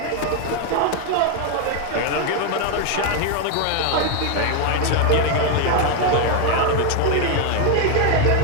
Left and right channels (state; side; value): different; both; correlation 0.01